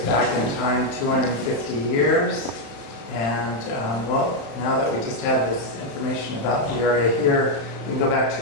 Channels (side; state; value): right; late; 35 ms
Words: back in time 250 years. And well, now that we just have this information about the area here, we can go back